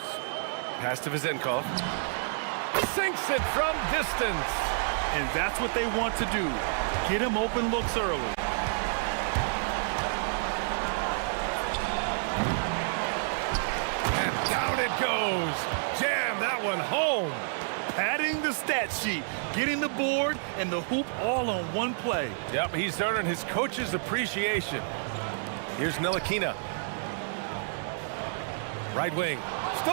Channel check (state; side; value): silent; left; digital silence